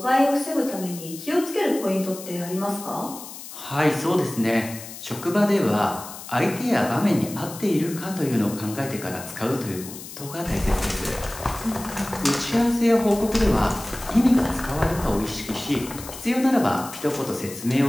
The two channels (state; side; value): noise; left; hiss, 13 dB below the sound